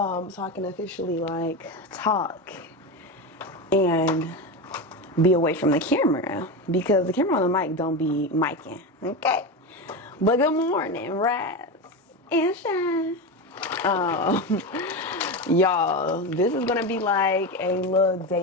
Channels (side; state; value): both; normal; correlation 0.19